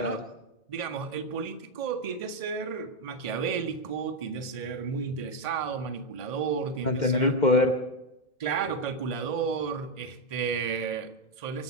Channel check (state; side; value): late; right; 1.5 ms